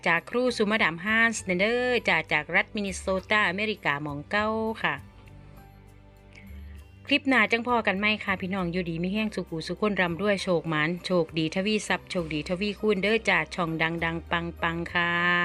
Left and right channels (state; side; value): identical; both; correlation 1.00